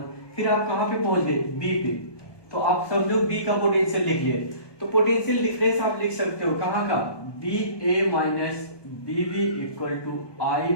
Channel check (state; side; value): late; right; 1.2 ms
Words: फिर आप कहां पे पहुंच गए, B पे, तो आप समझो B का पोटेंशियल लिख लिए। तो पोटेंशियल डिफरेंस आप लिख सकते हो कहां का, BA minus BB equal to